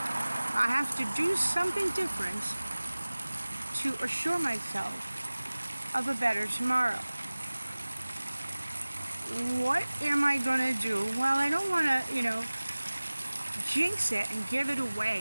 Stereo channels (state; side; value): inverted; both; correlation -1.00